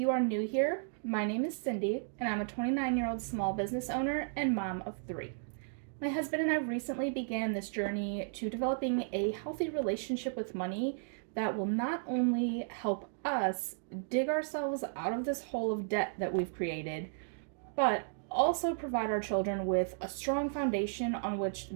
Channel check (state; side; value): silent; left; digital silence